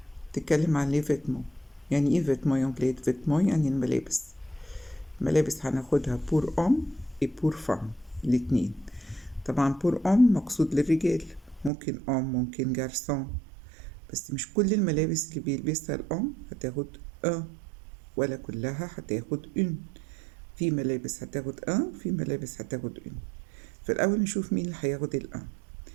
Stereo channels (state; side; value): drops out; left; at 11.7 s